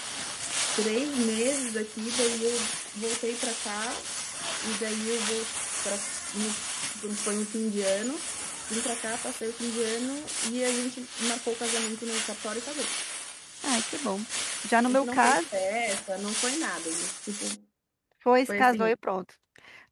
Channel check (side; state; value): both; identical; correlation 1.00